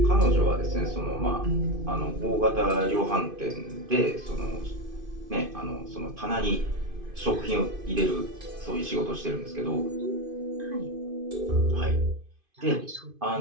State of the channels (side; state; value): left; late; 2.5 ms